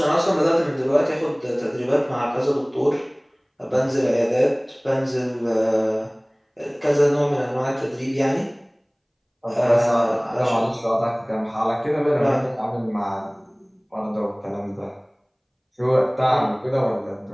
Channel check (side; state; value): both; identical; correlation 1.00